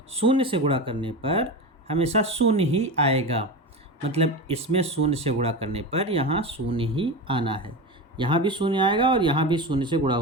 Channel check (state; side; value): normal; both; correlation 0.23